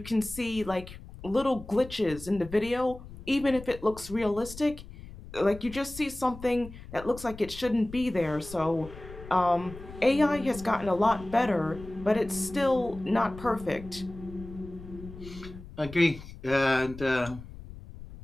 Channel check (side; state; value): left; noise; rumble, 15 dB below the sound